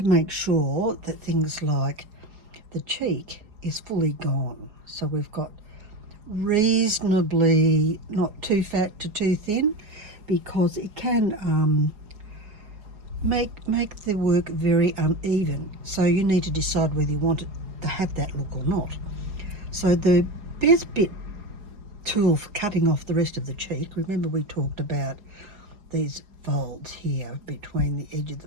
make sure that things like the cheek is fully gone. So we've got reasonably not too fat to too thin, because it can make the work very uneven. So you need to decide whether you want it to have that look or not. So the best bit tool for cutting off the rest of the cheek, remember we talked about these folds here between the edge of the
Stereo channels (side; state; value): left; late; 4.8 ms